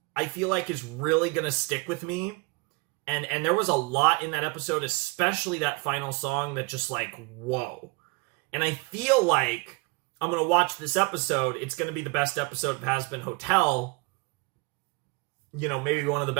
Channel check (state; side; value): quieter; left; 28.1 dB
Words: I feel like, is really going to stick with me. And there was a lot in that episode, especially that final song that just like, whoa. And I feel like I'm going to watch this episode. It's going to be the best episode of Hazbin Hotel. You know, maybe one of the